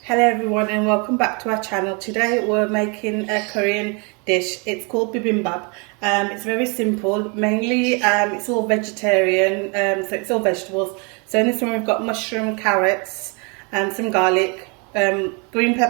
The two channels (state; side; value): quieter; left; 33.0 dB